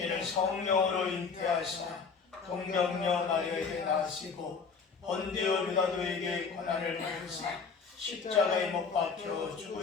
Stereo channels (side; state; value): right; quieter; 5.3 dB